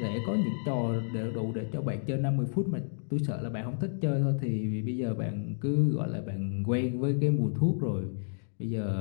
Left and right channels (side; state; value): right; silent; digital silence